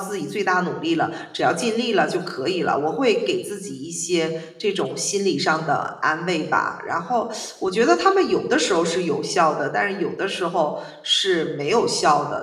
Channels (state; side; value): identical; both; correlation 1.00